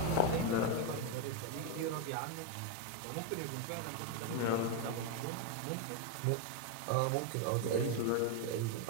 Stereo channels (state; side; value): different; both; correlation 0.02